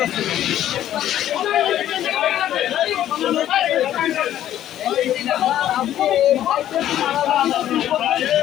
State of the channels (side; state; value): right; quieter; 12.0 dB